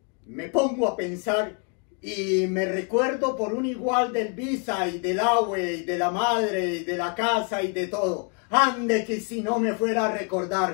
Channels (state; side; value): quieter; right; 37.0 dB